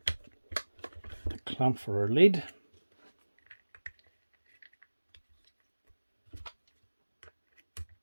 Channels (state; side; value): inverted; both; correlation -1.00